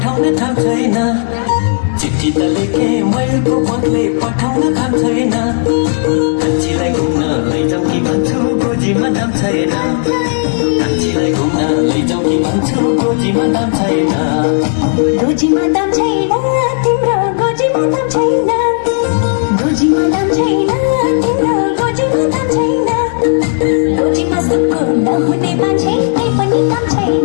थाम छैन चिठी त लेखे मयूरको पत्ले पठाउन थाम छैन कान्छीलाई घुम्न लैजाऊ कि भन्छु गोजीमा दाम छैन कान्छीलाई घुम्न लैजाऊ कि भन्छु गोजीमा दाम छैन गोजीमा दाम छैन तिम्रो गोजीमा दाम छैन गोजीमा दाम छैन तिम्रो गोजीमा दाम छैन गोजीमा सुक्खु नहुने मान्छे केही पनि काम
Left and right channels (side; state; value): right; silent; digital silence